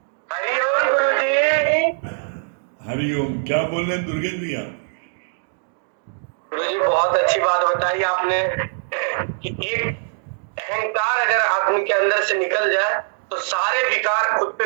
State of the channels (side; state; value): left; silent; digital silence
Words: हरिओम गुरुजी। हरिओम, क्या बोल रहे हैं दुर्गेश भैया? गुरुजी बहुत अच्छी बात बताई आपने कि एक अहंकार अगर आदमी के अंदर से निकल जाए तो सारे विकार खुद